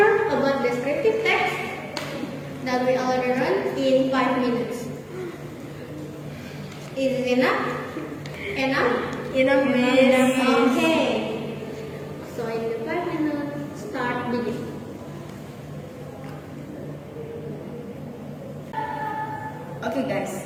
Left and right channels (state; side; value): identical; both; correlation 1.00